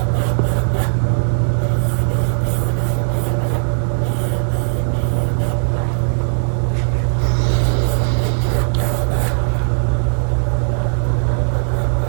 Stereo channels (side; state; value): left; silent; digital silence